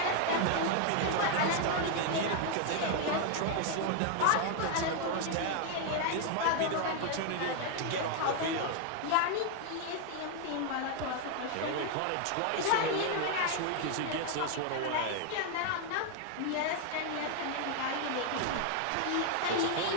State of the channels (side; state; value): both; different; correlation 0.00